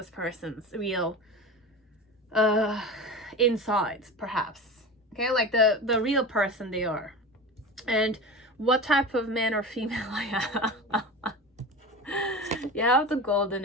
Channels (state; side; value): normal; both; correlation 0.29